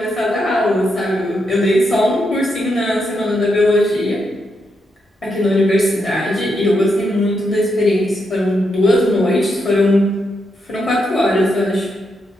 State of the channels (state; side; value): normal; both; correlation 0.82